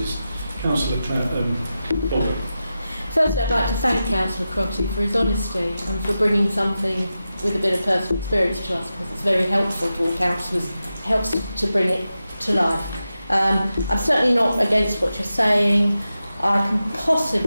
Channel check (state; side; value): inverted; both; correlation -0.92